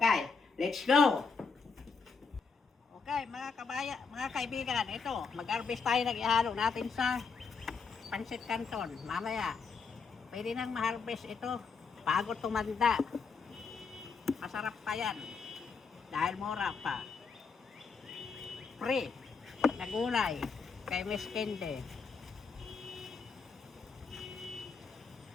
let's go! Okay, mga kaibigan, ito, mag-harvest tayo ng ihalo natin sa Pancit Canton. Mamaya, pwede nang ma-harvest ito bago tumanda. Masarap pa yan. Dahil mura pa. Free na gulay kay Miss Kende.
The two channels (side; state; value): right; quieter; 5.1 dB